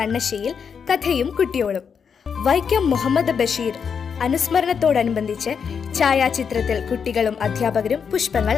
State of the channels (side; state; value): right; quieter; 6.6 dB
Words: കഥയും കുട്ടിയോളും. വൈക്കം മുഹമ്മദ് ബഷീർ അനുസ്മരണത്തോടനുബന്ധിച്ച് ഛായാചിത്രത്തിൽ കുട്ടികളും അധ്യാപകരും പുഷ്പങ്ങൾ